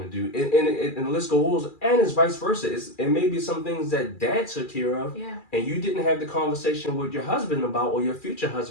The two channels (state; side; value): late; right; 2.4 ms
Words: do, and the list goes, and it's vice versa. It may be some things that dad took care of yeah, and you didn't have the conversation with your husband about or your future